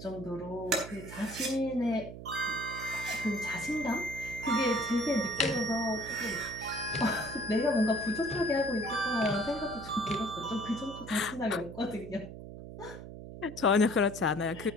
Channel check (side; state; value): right; noise; hum, 12 dB below the sound